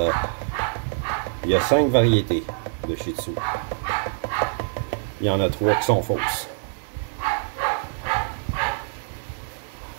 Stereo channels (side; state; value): left; silent; digital silence